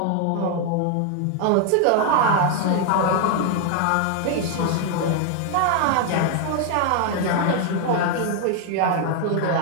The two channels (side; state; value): both; different; correlation 0.00